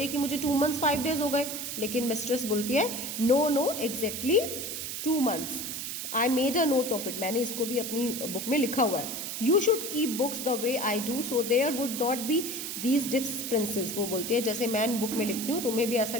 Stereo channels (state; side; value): noise; right; hiss, 5 dB below the sound